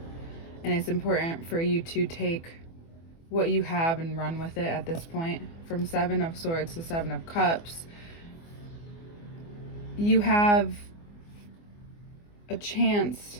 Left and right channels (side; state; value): right; late; 24 ms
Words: and it's important for you to take what you have and run with it at this point. From Seven of Swords to Seven of Cups, you have a chance